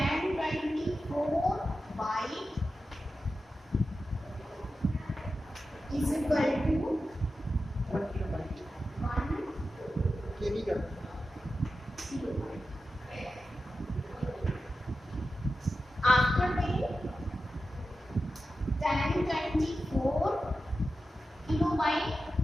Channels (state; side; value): normal; both; correlation 0.92